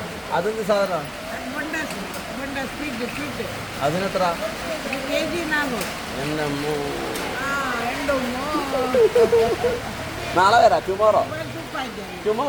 അതെന്ത് സാധനം? അതിനെത്ര? നാളെ വരാം. ടുമോറോ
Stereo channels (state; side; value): identical; both; correlation 1.00